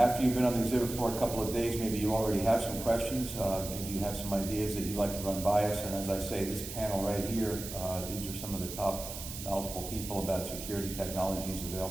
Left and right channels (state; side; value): noise; right; hiss, 9 dB below the sound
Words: you've been on the exhibit floor a couple of days, maybe you already have some questions. Maybe you have some ideas that you'd like to run by us. And as I say, this panel right here, these are some of the top knowledgeable people about security technologies